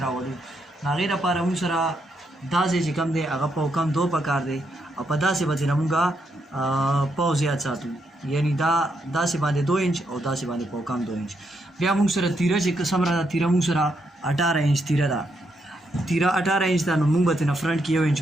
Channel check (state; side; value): normal; both; correlation 0.79